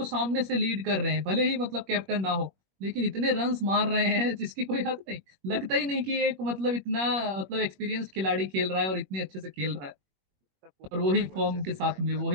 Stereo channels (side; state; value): left; late; 21 ms